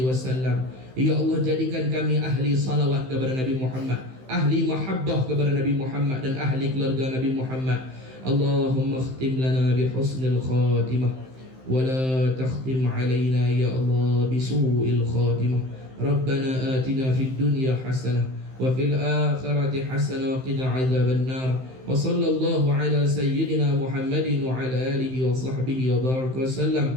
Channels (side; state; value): left; late; 15 ms